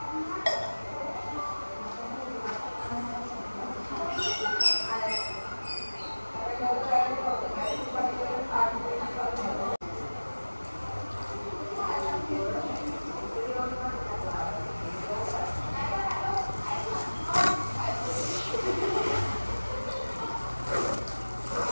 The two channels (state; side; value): inverted; both; correlation -1.00